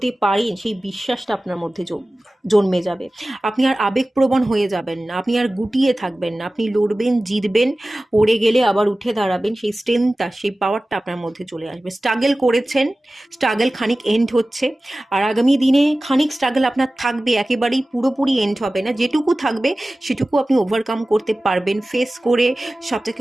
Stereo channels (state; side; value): normal; both; correlation 0.97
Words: পারেন সেই বিশ্বাসটা আপনার মধ্যে জন্মে যাবে। আপনি আর আবেগপ্রবণ হয়ে যাবেন না, আপনি আর গুটিয়ে থাকবেন না, আপনি লড়বেন, জিতবেন, পড়ে গেলে আবার উঠে দাঁড়াবেন। সেই স্ট্রেংথটা, সেই পাওয়ারটা আপনার মধ্যে চলে আসবে। স্ট্রাগল করেছেন, স্ট্রাগল খানিক এন্ড হচ্ছে, আর আগামী দিনে খানিক স্ট্রাগল আপনার থাকবে, একেবারেই পুরোপুরি এন্ড হবে না। যেটুকু থাকবে সেটুকু আপনি ওভারকাম করতে পারবেন। ফেস করে সবটাকে